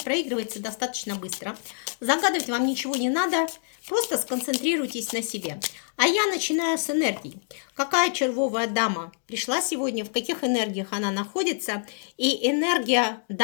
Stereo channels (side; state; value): right; silent; digital silence